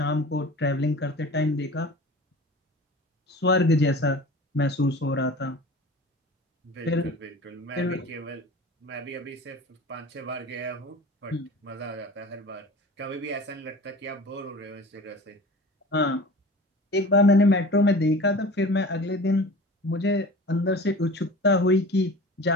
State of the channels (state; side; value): normal; both; correlation 0.39